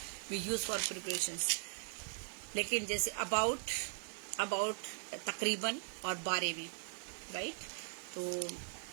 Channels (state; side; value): silent; left; 51 dB below the other